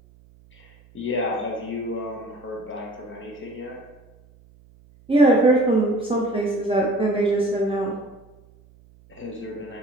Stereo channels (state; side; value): noise; right; hum, 27 dB below the sound